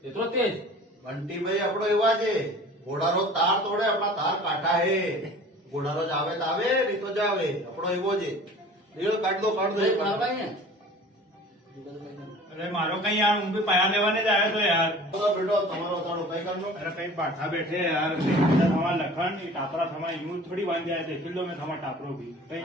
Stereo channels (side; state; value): both; normal; correlation 0.44